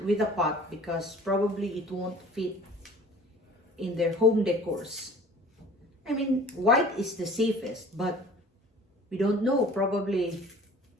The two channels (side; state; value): both; normal; correlation 0.46